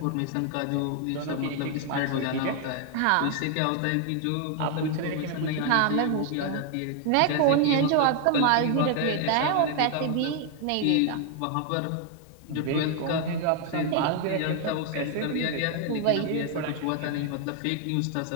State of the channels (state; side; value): different; both; correlation 0.00